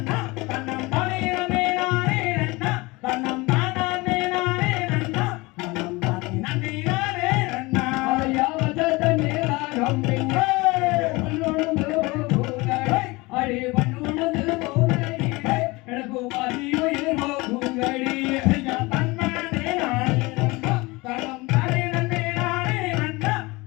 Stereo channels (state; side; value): quieter; right; 23.4 dB